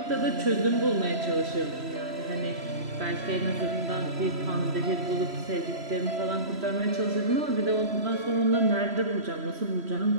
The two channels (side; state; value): left; late; 3.0 ms